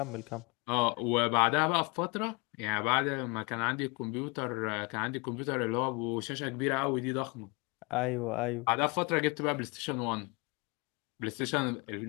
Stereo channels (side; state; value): right; quieter; 29.6 dB